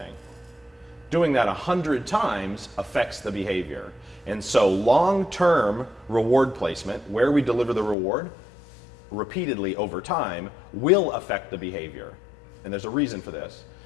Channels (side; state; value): right; drops out; at 8.0 s